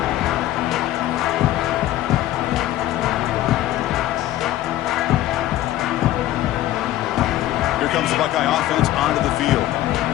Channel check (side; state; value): right; quieter; 14.3 dB